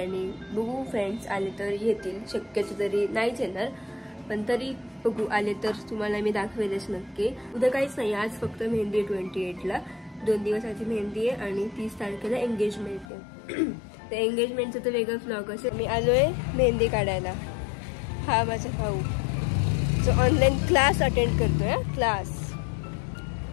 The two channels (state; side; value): drops out; right; at 13.1 s